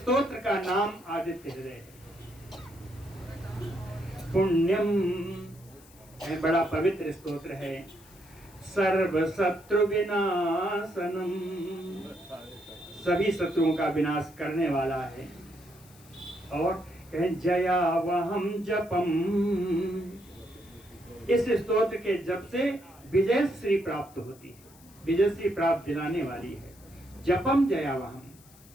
का नाम आदित्य हृदय है। पुण्यम बड़ा पवित्र स्तोत्र है। सर्व शत्रु विनाशनम, सभी शत्रुओं का विनाश करने वाला है। और कहें जयावहम जपम, इस स्तोत्र के जप से विजय श्री प्राप्त होती है, विजय श्री प्राप्त दिलाने वाली है। जपम जयावहम,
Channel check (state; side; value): noise; left; hiss, 25 dB below the sound